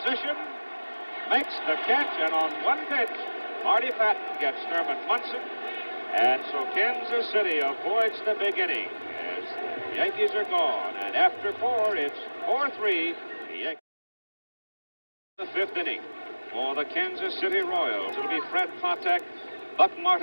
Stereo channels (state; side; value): inverted; both; correlation -1.00